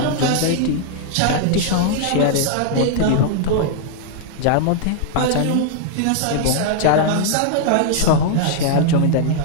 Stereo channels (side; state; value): both; different; correlation 0.00